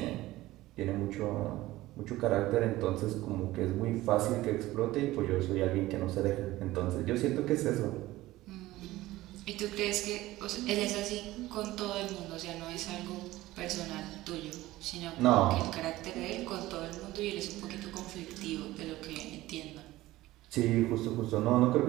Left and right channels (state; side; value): quieter; left; 17.1 dB